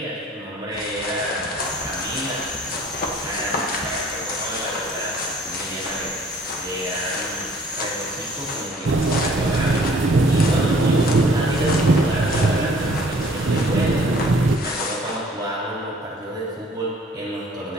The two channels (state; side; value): normal; both; correlation 0.56